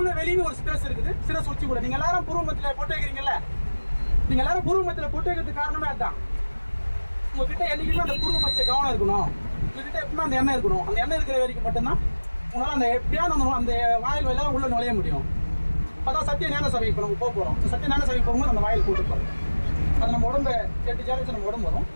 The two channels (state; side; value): inverted; both; correlation -1.00